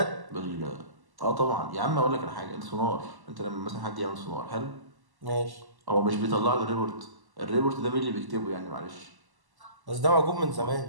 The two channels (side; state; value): left; late; 1.1 ms